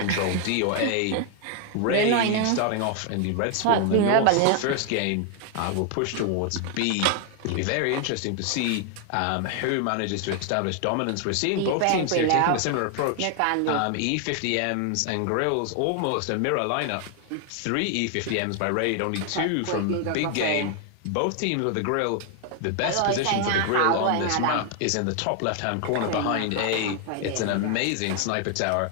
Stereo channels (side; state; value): both; different; correlation 0.00